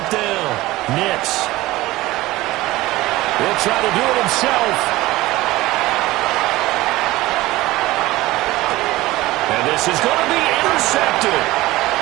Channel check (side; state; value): left; quieter; 18.3 dB